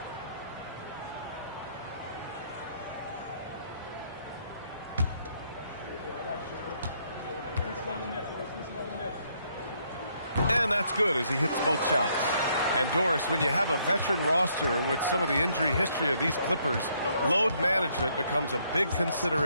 And that's good as he hits both shots. And Doris, when you have a veteran roster with some of the injury history of these Clippers, load management becomes a big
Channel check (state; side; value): inverted; both; correlation -0.70